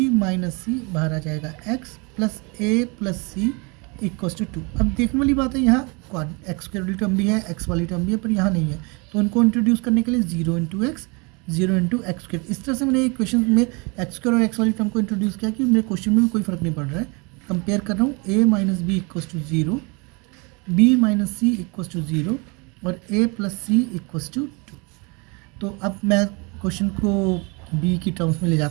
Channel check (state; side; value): quieter; left; 30.3 dB